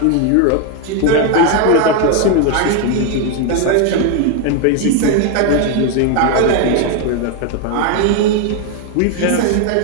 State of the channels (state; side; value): different; both; correlation 0.01